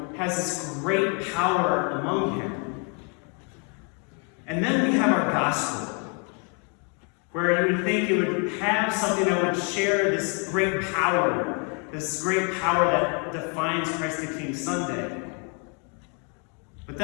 has this great power among him. And then we have our gospel, where you would think it would have something that would share this great power that defines Christ the King Sunday. But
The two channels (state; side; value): quieter; right; 36.1 dB